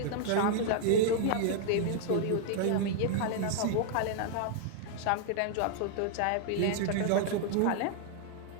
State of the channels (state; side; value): different; both; correlation 0.00